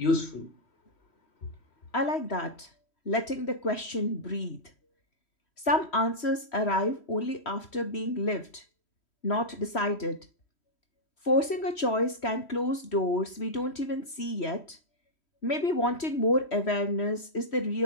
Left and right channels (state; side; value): late; right; 3.1 ms